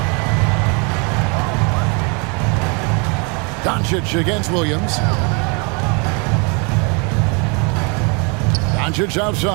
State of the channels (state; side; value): quieter; left; 33.3 dB